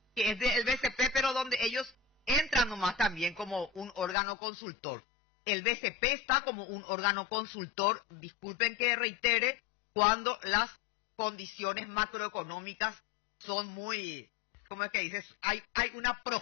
que es del BCP, pero donde ellos entran nomás también como un órgano consultor. El BCP está como un órgano consultor, disculpen que reitere, cuando las condiciones macroeconómicas son muy, ¿cómo es que dices? Hay una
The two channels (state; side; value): drops out; right; at 4.2 s